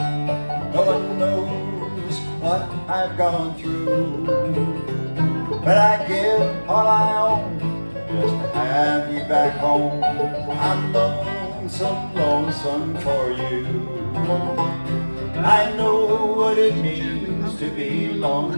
No one knows what I've gone through, but I give all I own just to have you back home. I'm lonesome, lonesome for you. I know what it means to be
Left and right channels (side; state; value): both; inverted; correlation -1.00